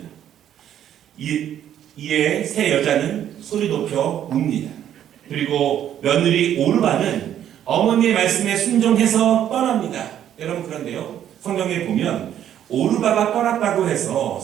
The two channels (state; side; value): quieter; left; 10.6 dB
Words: 이에 세 여자는 소리 높여 웁니다. 그리고 며느리 오르바는 어머니의 말씀에 순종해서 떠납니다. 여러분, 그런데요, 성경에 보면 오르바가 떠났다고 해서